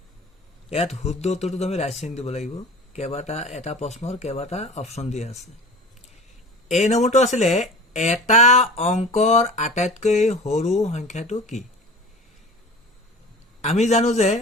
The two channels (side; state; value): both; normal; correlation 0.37